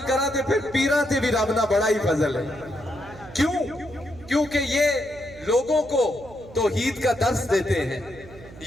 کرا دے پھر پیران تے بھی رب نہ بڑا ہی فضل ہے۔ کیوں؟ کیونکہ یہ لوگوں کو توحید کا درس دیتے ہیں،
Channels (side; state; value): right; noise; hum, 19 dB below the sound